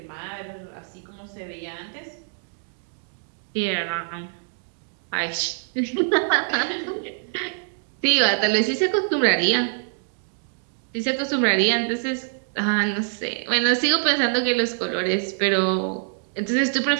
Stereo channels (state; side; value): silent; left; digital silence